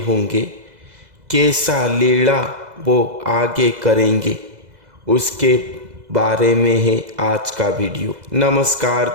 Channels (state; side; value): late; left; 2.0 ms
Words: होंगे, कैसा लीला वो आगे करेंगे, उसके बारे में है आज का वीडियो। नमस्कार